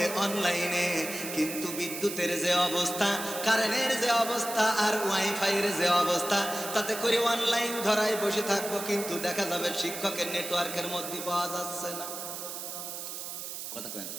অনলাইনে। কিন্তু বিদ্যুতের যে অবস্থা, কারেন্টের যে অবস্থা, আর ওয়াইফাইয়ের যে অবস্থা, তাতে করে অনলাইন ধরায় বসে থাকবো, কিন্তু দেখা যাবে শিক্ষকের নেটওয়ার্কের মধ্যে পাওয়া যাচ্ছে না। কথা কয় না?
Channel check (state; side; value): noise; right; hiss, 7 dB below the sound